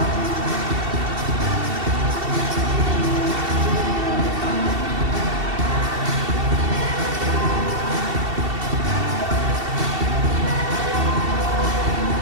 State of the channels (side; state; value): left; late; 2.7 ms